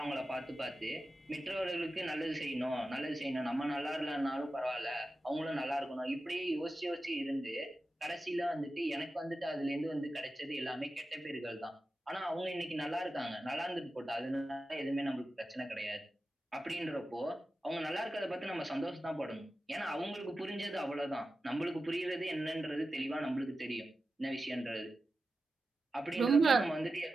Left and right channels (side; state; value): both; normal; correlation 0.93